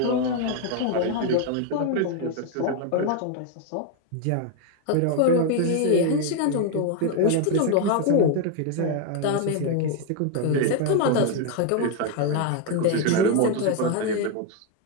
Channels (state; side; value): different; both; correlation 0.01